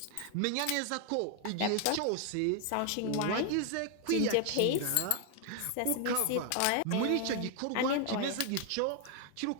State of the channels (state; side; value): different; both; correlation 0.00